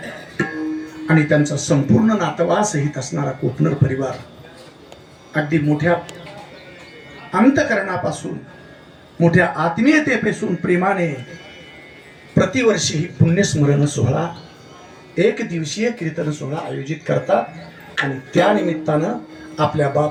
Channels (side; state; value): both; identical; correlation 1.00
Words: आणि त्यांचा संपूर्ण नातवा सहित असणारा कोपनर परिवार अगदी मोठ्या अंतकरणापासून, मोठ्या आत्मीयतेपासून प्रेमाने प्रतिवर्षी ही पुण्यस्मरण सोहळा, एक दिवसीय कीर्तन सोहळा आयोजित करतात. आणि त्या निमित्तानं आपल्या